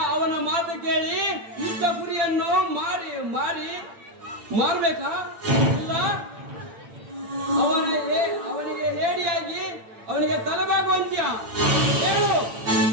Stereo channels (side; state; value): left; late; 8.8 ms